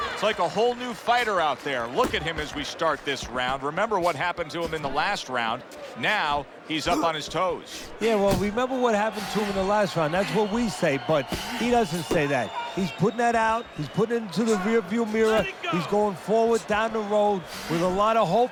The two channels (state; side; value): identical; both; correlation 1.00